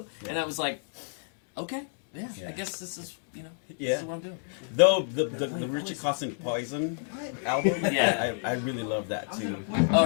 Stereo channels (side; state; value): right; silent; digital silence